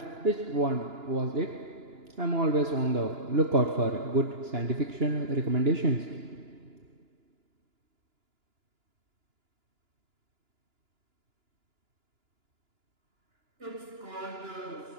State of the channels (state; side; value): late; left; 2.9 ms